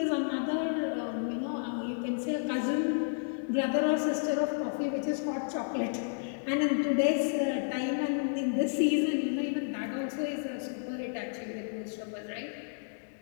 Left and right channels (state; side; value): silent; right; digital silence